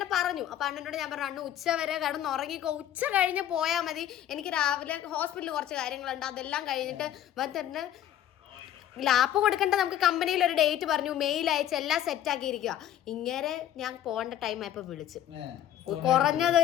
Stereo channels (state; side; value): quieter; right; 11.5 dB